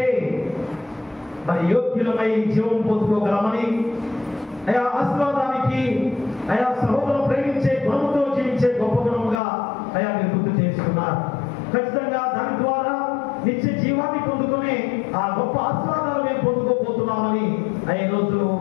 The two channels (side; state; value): right; drops out; at 9.4 s